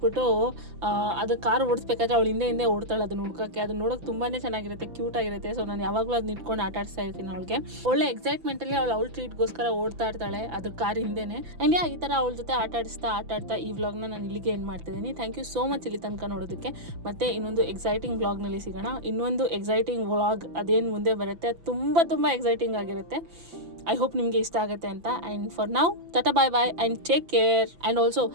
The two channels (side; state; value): left; late; 5.9 ms